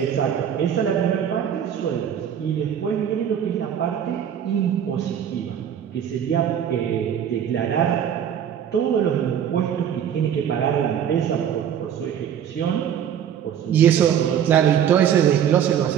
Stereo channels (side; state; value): left; quieter; 9.1 dB